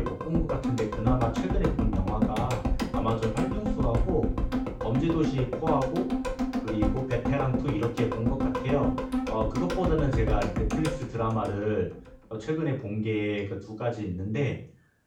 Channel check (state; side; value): identical; both; correlation 1.00